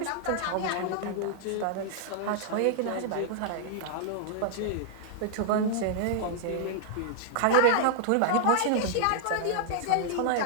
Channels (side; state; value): both; different; correlation -0.01